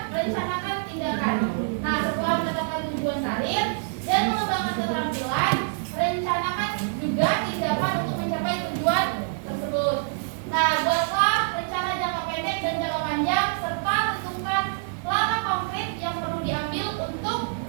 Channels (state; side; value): silent; left; digital silence